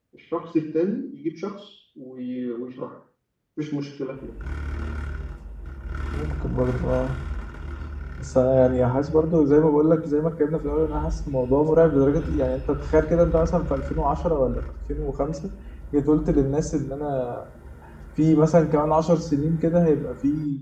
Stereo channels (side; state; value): both; identical; correlation 1.00